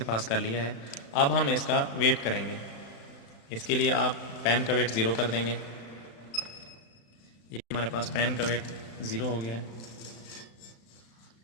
पास कर लिया है। अब हम इसका वेट करेंगे। इसके लिए आप पैन का वेट 0 कर देंगे। ये हमारे पास पैन का वेट 0 हो गया।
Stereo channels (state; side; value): late; right; 36 ms